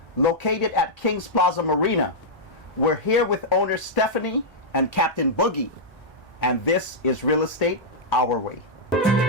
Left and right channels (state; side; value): normal; both; correlation -0.08